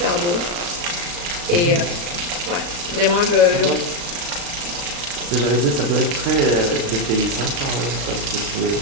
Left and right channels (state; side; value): late; left; 36 ms